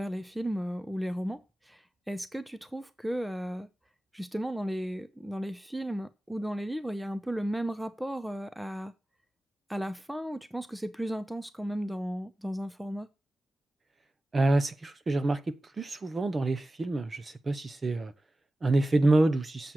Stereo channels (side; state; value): both; normal; correlation 0.96